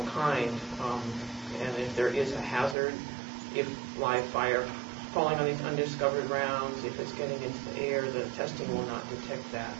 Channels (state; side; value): drops out; left; at 2.8 s